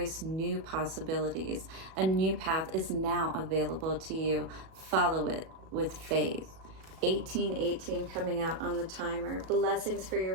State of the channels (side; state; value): left; late; 37 ms